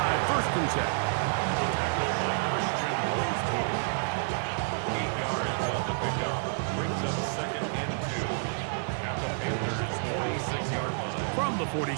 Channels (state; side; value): silent; left; digital silence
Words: 1st and 10. From the